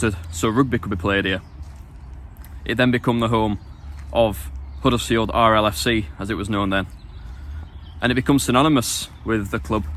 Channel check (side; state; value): both; identical; correlation 1.00